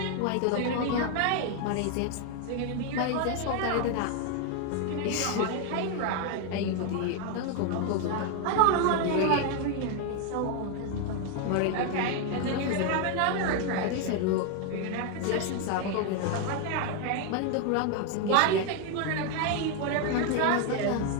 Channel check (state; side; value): different; both; correlation 0.01